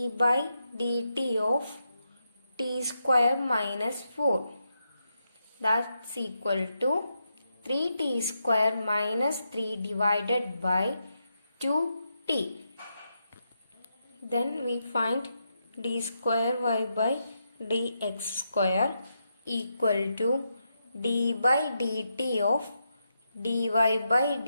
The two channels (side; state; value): both; inverted; correlation -0.83